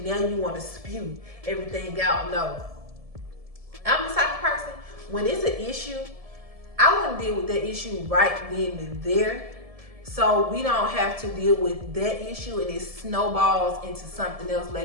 now you want to spew everything out. No. I'm the type of person, when it's an issue, I want to deal with that issue right then and there, so we don't have to deal with that issue and it snowballs into something else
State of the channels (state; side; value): late; left; 1.7 ms